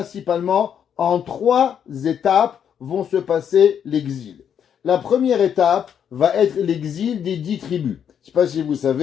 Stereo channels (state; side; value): quieter; right; 8.4 dB